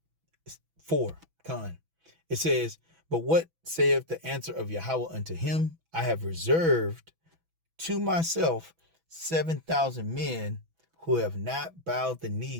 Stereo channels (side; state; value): left; late; 6.1 ms